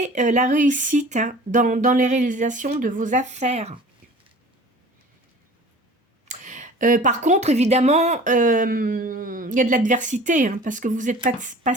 la réussite hein, dans les réalisations de vos affaires. Par contre, évidemment, il y a de l'adversité, hein, parce que vous n'êtes pas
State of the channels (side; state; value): both; normal; correlation 0.44